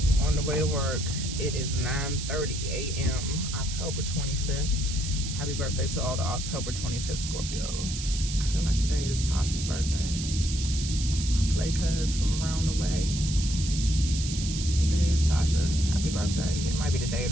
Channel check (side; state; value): right; noise; hiss, 7 dB below the sound